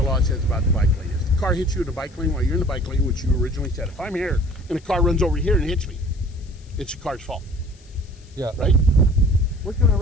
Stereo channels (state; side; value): noise; left; hiss, 28 dB below the sound